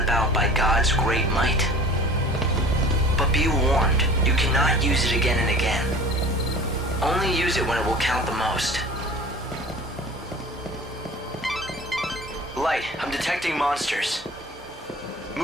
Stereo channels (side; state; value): both; normal; correlation 0.42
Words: by God's great might. But be warned, you cannot use it again and again. Only use it when it will count the most. Light, I'm detecting monsters.